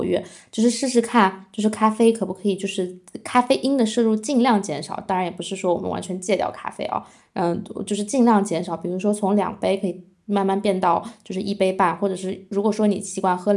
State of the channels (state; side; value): identical; both; correlation 1.00